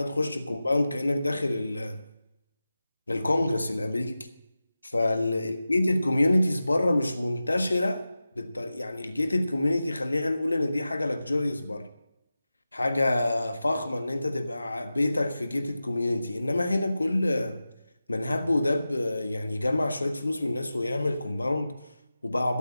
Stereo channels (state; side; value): inverted; both; correlation -0.94